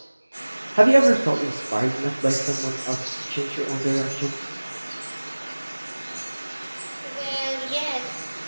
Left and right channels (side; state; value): both; inverted; correlation -1.00